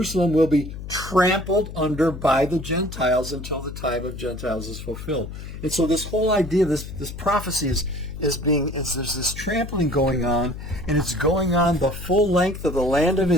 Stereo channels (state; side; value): noise; left; hum, 10 dB below the sound